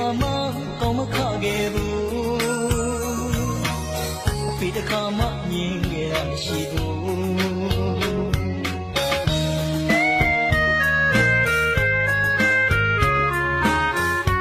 ါမှကောင်းမခခဲ့ဘူးအဖေတစ်ခါမှမြင်ခဲ့ရမရှိဘူး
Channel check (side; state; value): both; identical; correlation 1.00